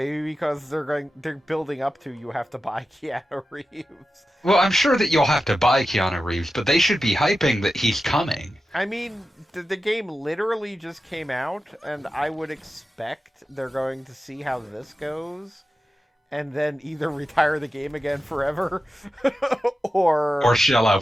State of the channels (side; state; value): both; normal; correlation 0.92